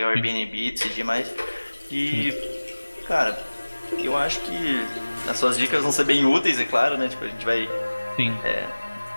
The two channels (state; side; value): inverted; both; correlation -1.00